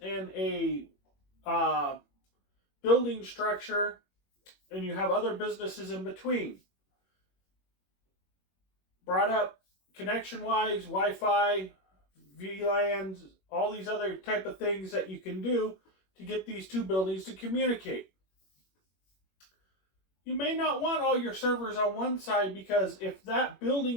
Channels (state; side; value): late; right; 21 ms